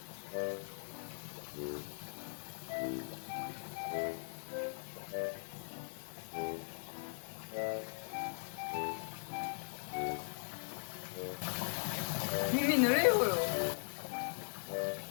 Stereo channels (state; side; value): silent; right; 51 dB below the other